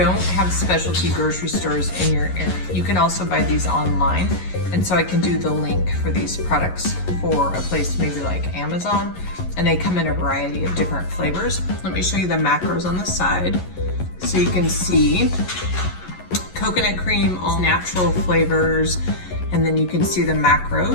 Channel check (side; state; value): right; late; 11 ms